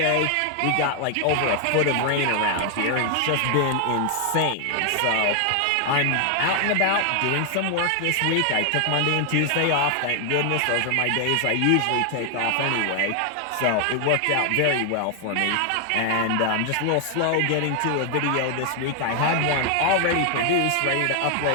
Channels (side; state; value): both; different; correlation 0.00